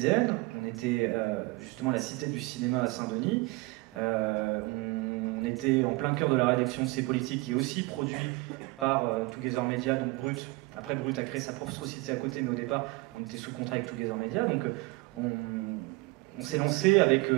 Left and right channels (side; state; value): left; quieter; 23.5 dB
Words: on était justement à la Cité du Cinéma à Saint-Denis, on était en plein cœur de la rédaction de C'est Politique, qui est aussi produit par Together Media, donc Brut. Après, Brut a créé sa propre société à côté, mais au départ, on était sous contrat avec Together Media, donc on s'est lancé avec